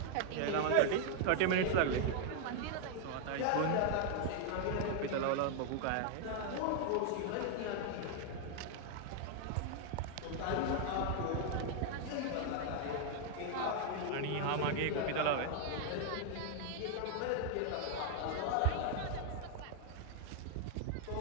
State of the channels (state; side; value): different; both; correlation 0.00